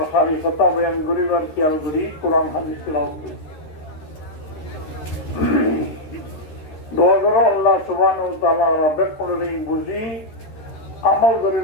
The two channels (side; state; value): right; late; 13 ms